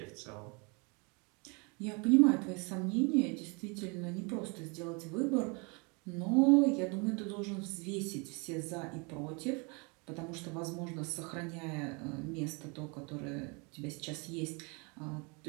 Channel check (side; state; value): left; quieter; 31.5 dB